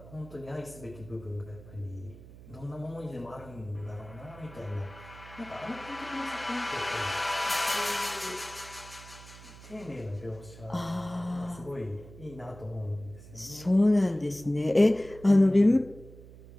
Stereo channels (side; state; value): right; noise; hum, 18 dB below the sound